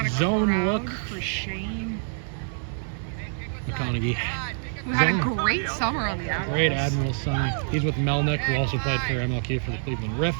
a Zone look for Shane McConaughey. who had a great summer on the Admirals. Great Admirals summer. He's with Melnick, who also played for MLK for the Cleveland Riff.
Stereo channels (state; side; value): silent; left; digital silence